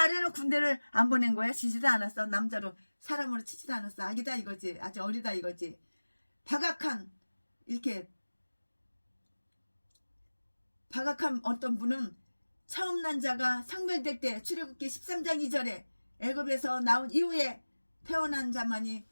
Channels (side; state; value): both; inverted; correlation -1.00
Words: 군대를 안 보낸 거야. 지지도 않았어. 남자로 사람으로 치지도 않았어. 아기다 이거지. 아직 어리다 이거지. 박악한 어떤 분은 처음 난 자가 성별될 때 출애굽기 13장 2절에 애굽에서 나온 이후에 태어난 자만이